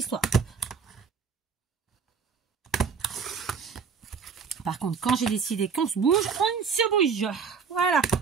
Par contre, quand j'ai décidé qu'on se bouge, on se bouge. Voilà.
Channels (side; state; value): left; quieter; 6.0 dB